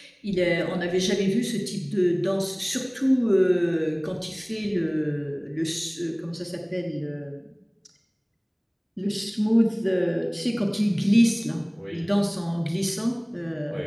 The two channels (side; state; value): both; identical; correlation 1.00